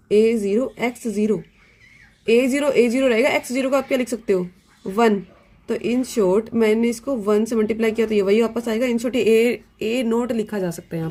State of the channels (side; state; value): both; identical; correlation 1.00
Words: ए जीरो एक्स जीरो, ए जीरो रहेगा, एक्स जीरो को आप क्या लिख सकते हो 1, तो इन शॉर्ट मैंने इसको 1 से मल्टीप्लाई किया तो ये वही वापस आएगा। इन शॉर्ट ए नोट लिखा जा सकता है,